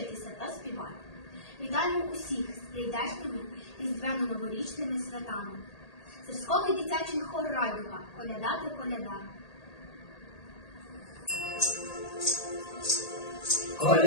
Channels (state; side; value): late; right; 1.8 ms